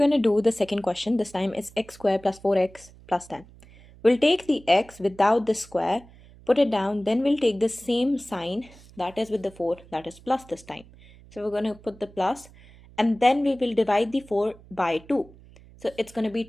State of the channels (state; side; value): noise; right; hum, 23 dB below the sound